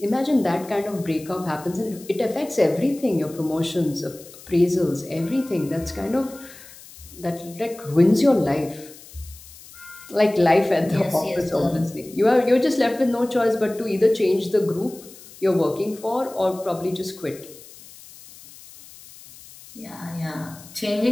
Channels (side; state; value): left; noise; hiss, 20 dB below the sound